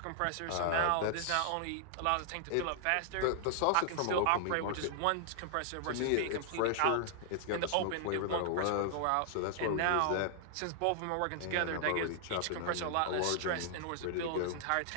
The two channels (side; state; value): both; different; correlation -0.01